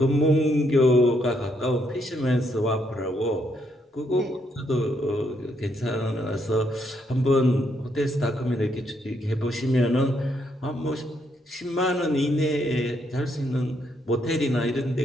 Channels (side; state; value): both; normal; correlation 0.75